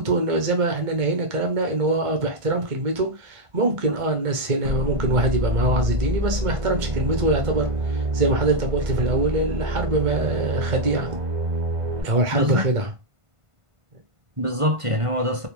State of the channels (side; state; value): left; late; 1.5 ms